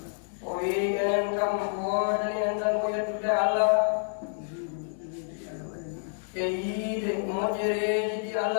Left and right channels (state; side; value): silent; right; 59 dB below the other